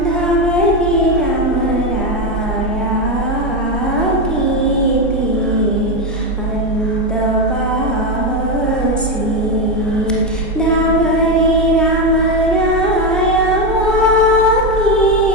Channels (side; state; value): both; normal; correlation 0.10